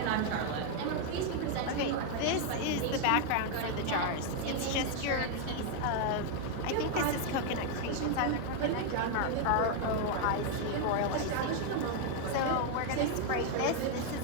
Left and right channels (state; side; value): different; both; correlation 0.00